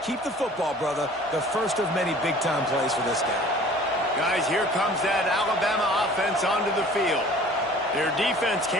Keep the football, brother. The first of many big-time plays for this guy. Guys, here comes that Alabama offense onto the field. Their defense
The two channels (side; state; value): both; normal; correlation 0.48